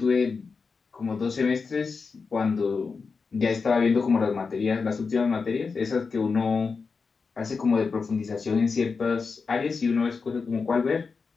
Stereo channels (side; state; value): right; quieter; 4.9 dB